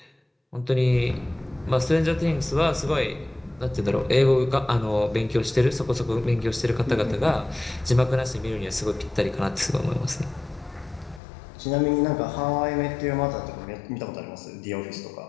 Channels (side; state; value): right; drops out; at 11.2 s